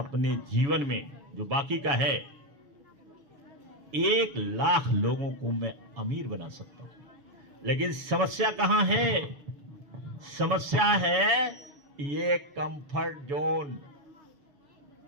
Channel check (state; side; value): late; left; 7.1 ms